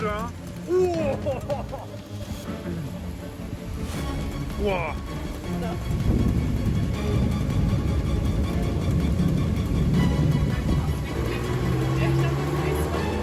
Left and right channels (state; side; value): identical; both; correlation 1.00